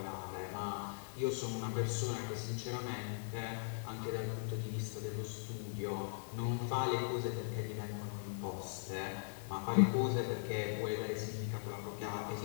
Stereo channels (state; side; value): silent; right; 51 dB below the other